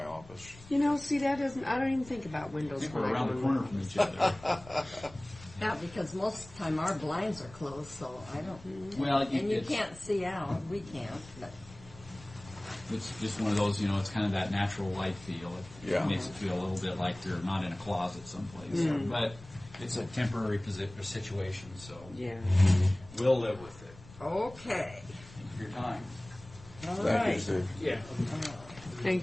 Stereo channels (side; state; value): left; noise; rumble, 19 dB below the sound